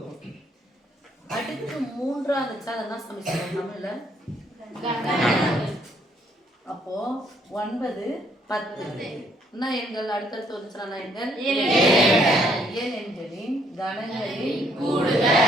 அடுத்து மூன்றாவது சாதனா சமீகரணம் தமிழ்ல அப்போ 9 10 என்ன எண்கள் அடுத்தடுத்து வந்துச்சுனா எண்கள் ஏழு எண்களின் கணங்களின்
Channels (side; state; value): both; normal; correlation 0.68